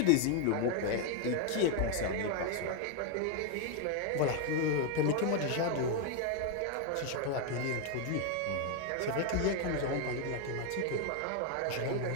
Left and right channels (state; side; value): different; both; correlation 0.01